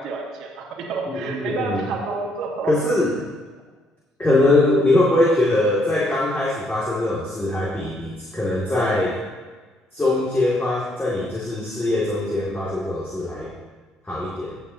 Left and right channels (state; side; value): normal; both; correlation 0.71